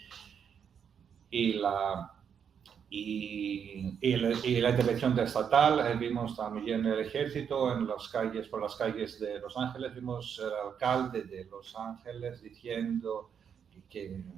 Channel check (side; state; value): left; quieter; 7.6 dB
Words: la intervención estatal. Vimos también el ejército por las calles de Los Ángeles. Vimos el alcalde de Los Ángeles diciendo